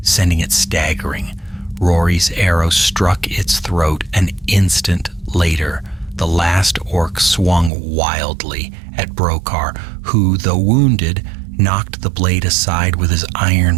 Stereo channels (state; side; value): drops out; left; at 7.7 s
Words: sending it staggering. Rory's arrow struck its throat. An instant later, the last orc swung wildly at Brokar, who, though wounded, knocked the blade aside with his iron